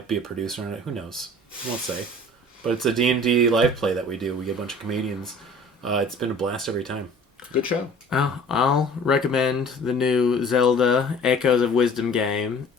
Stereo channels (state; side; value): normal; both; correlation 0.47